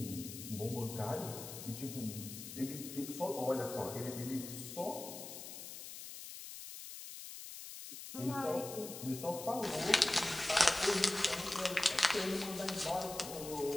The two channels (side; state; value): left; noise; hiss, 10 dB below the sound